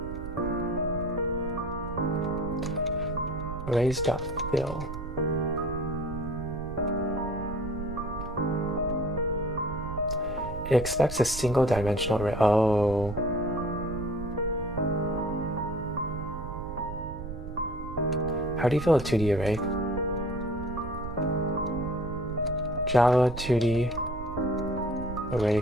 Arrays.fill. It expects a single dimensional array. Oh. How do you fill a 2D array? Java 2D array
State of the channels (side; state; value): right; noise; rumble, 9 dB below the sound